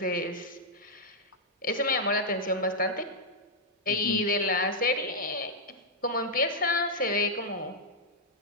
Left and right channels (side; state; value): both; normal; correlation -0.06